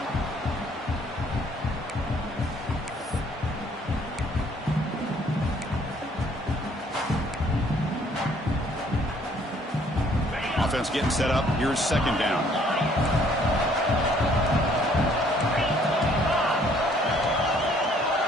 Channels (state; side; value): normal; both; correlation 0.62